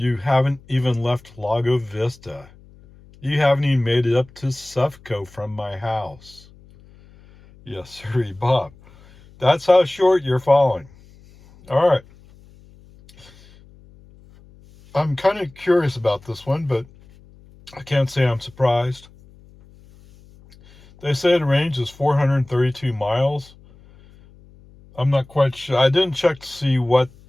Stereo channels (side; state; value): left; noise; hum, 25 dB below the sound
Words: haven't even left Lago Vista. You haven't even made it up to Sufco from my house. Yes, sir, Bob. That's how short you're falling. All right. I'm kind of curious about this one, but I can't say I'm surprised. They say the range is 432 miles. I'm not quite sure. I didn't check to see what